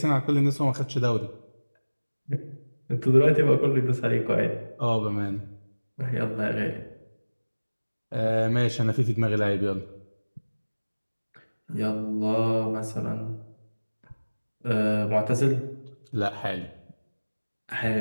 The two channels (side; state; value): both; inverted; correlation -1.00